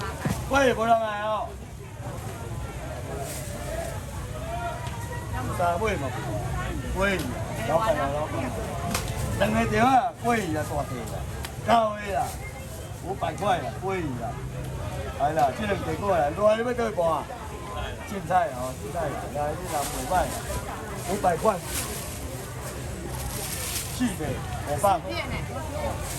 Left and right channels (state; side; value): identical; both; correlation 1.00